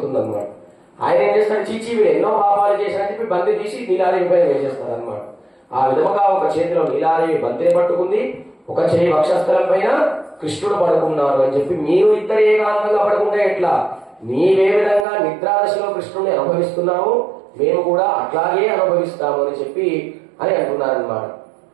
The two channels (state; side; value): drops out; left; at 15.1 s